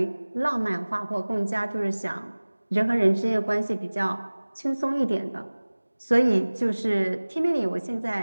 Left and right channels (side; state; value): both; inverted; correlation -1.00